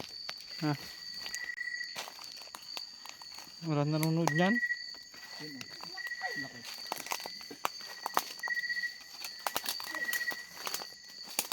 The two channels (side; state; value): both; identical; correlation 1.00